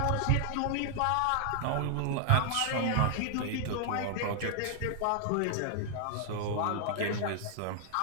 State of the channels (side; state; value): both; different; correlation 0.00